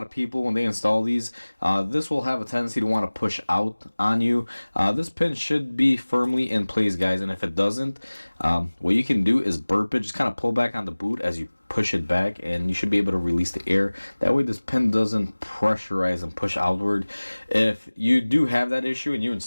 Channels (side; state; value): both; inverted; correlation -1.00